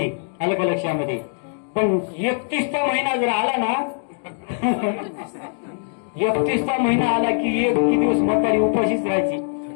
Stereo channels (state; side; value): silent; right; digital silence